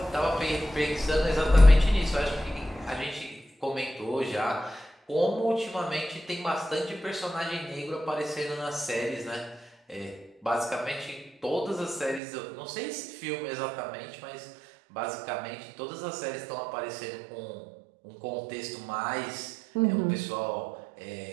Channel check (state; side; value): drops out; left; at 12.2 s